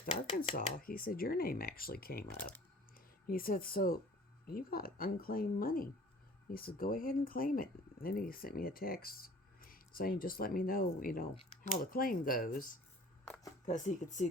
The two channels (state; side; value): normal; both; correlation 0.49